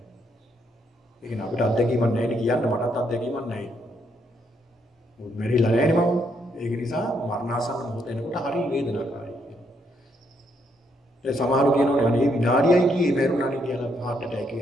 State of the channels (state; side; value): normal; both; correlation 0.74